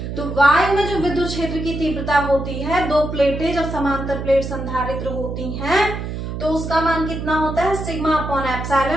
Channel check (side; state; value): right; noise; hum, 6 dB below the sound